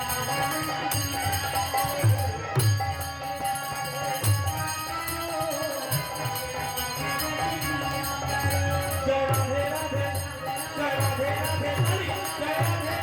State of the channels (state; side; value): identical; both; correlation 1.00